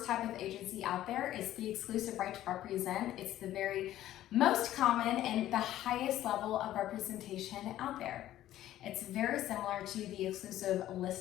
type of agency out there. It's the exclusive right to represent. It's the very most common and the highest level of representation out there. It's very similar to the exclusive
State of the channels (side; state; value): right; quieter; 13.3 dB